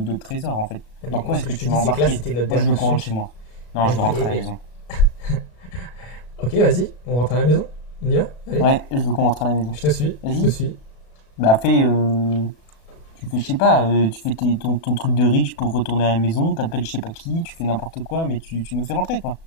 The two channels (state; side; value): late; right; 35 ms